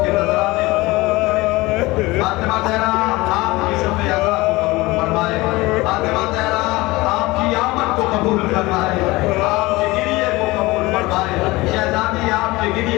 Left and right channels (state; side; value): quieter; right; 21.1 dB